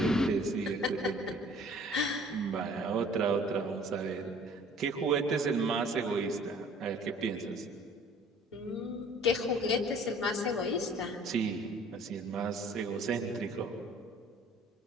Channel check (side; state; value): both; normal; correlation 0.52